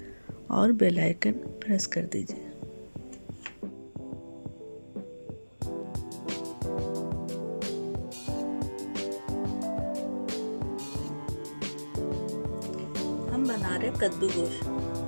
और बेल आइकन प्रेस कर दीजिए। हम बना रहे कद्दू गोश्त।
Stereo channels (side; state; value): both; inverted; correlation -1.00